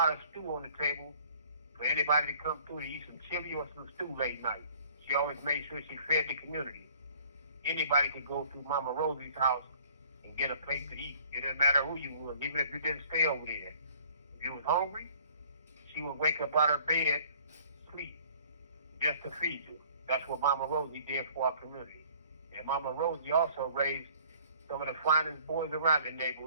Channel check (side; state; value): both; inverted; correlation -0.55